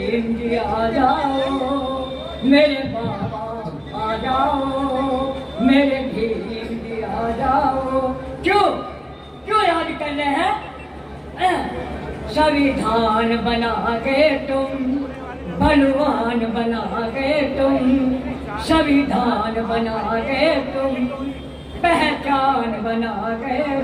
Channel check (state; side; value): identical; both; correlation 1.00